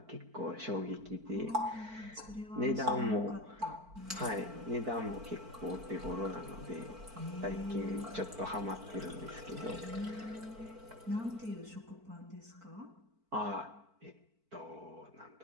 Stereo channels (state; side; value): late; left; 4.5 ms